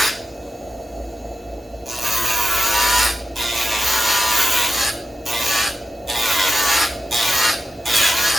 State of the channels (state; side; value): normal; both; correlation 0.91